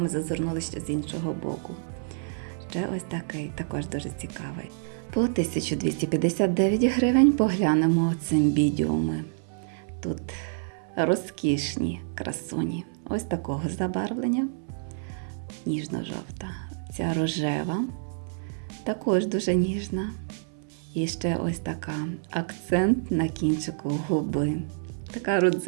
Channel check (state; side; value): silent; left; 60 dB below the other